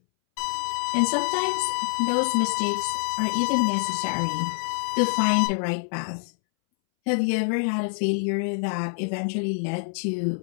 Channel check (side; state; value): right; silent; 61 dB below the other